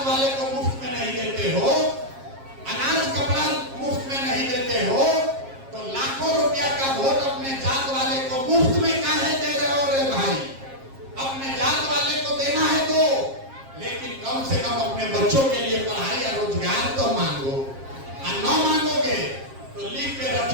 वाले को मुफ्त में नहीं देते हो, अनाज कपड़ा मुफ्त में नहीं देते हो, तो लाखों रुपया का वोट अपने जात वाले को मुफ्त में काहे दे रहे हो रे भाई। अपने जात वाले को देना है तो, लेकिन कम से कम अपने बच्चों के लिए पढ़ाई या रोजगार तो मांगो। और न मांगोगे तो लिख के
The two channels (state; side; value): late; left; 7.4 ms